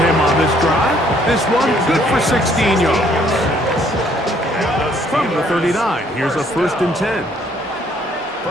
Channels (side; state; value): both; normal; correlation 0.64